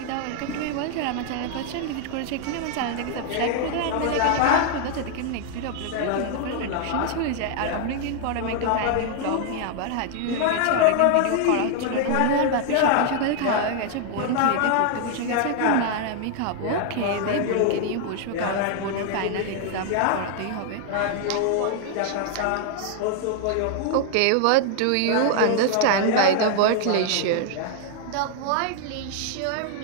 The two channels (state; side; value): different; both; correlation 0.00